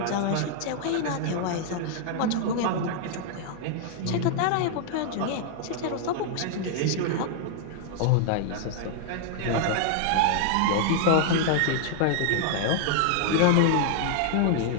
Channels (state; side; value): different; both; correlation 0.00